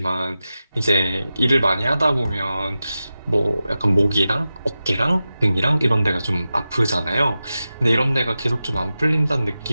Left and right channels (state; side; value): inverted; both; correlation -0.93